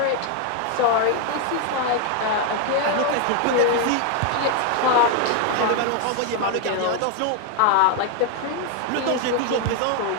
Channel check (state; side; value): different; both; correlation 0.01